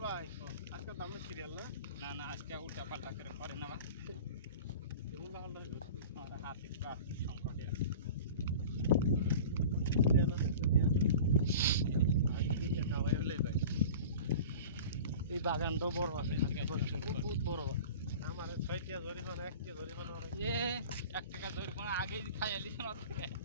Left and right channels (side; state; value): both; inverted; correlation -0.38